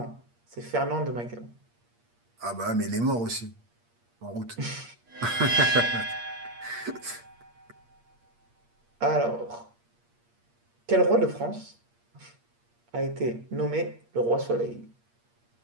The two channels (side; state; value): left; late; 8.5 ms